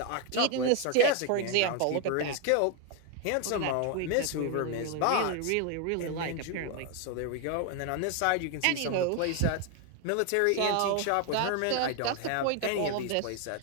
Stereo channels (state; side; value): different; both; correlation 0.01